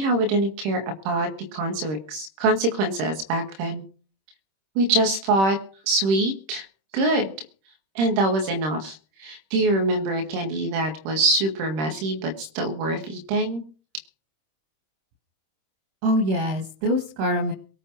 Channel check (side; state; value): left; late; 26 ms